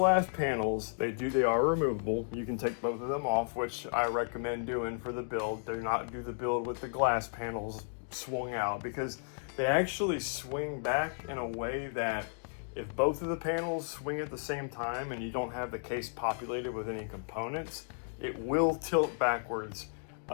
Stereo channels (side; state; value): right; silent; digital silence